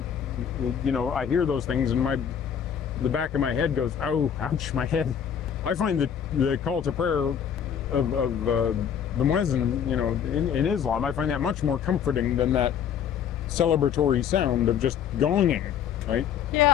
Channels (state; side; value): quieter; right; 8.3 dB